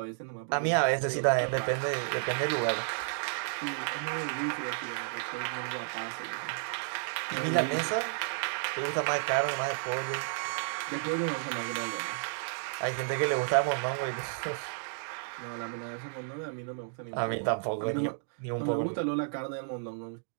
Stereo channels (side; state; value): left; silent; digital silence